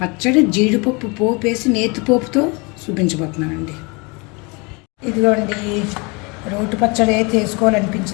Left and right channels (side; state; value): right; quieter; 29.0 dB